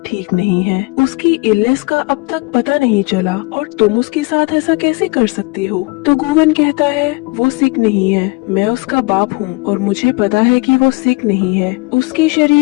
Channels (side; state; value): right; quieter; 26.9 dB